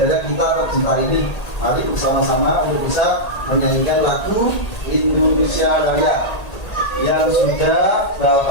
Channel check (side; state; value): right; late; 1.8 ms